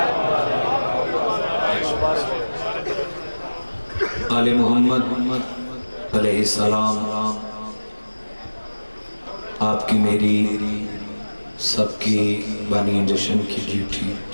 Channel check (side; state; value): both; inverted; correlation -1.00